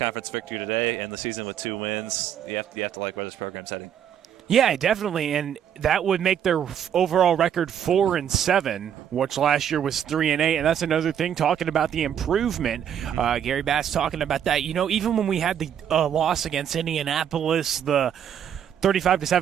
victory today, end the season with 2 wins, you have to like where this program's heading. Yeah, definitely, and that would make their overall record 4-7, which last year was 3-8, and that's another thing. Talking about the improvement, Gary Bass talking about that. You know, even when we had the loss against Indianapolis, the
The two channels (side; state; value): left; quieter; 9.1 dB